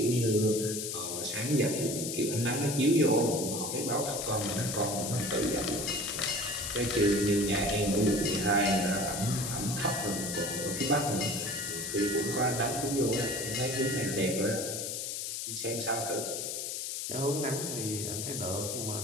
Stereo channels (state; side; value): noise; left; hiss, 4 dB below the sound